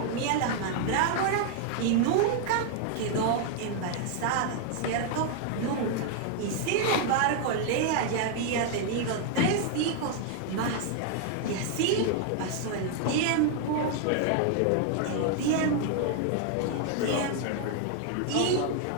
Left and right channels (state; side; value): different; both; correlation 0.00